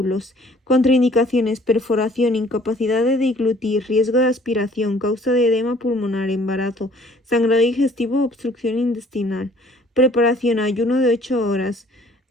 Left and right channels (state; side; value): normal; both; correlation 0.57